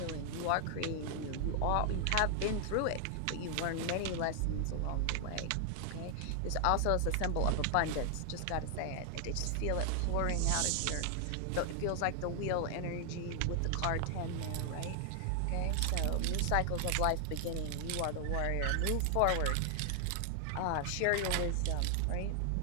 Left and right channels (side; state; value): both; different; correlation 0.00